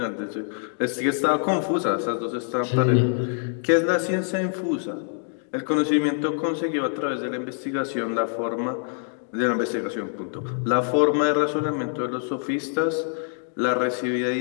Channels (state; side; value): silent; right; digital silence